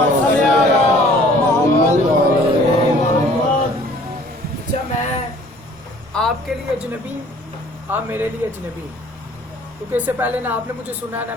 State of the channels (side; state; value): both; normal; correlation 0.53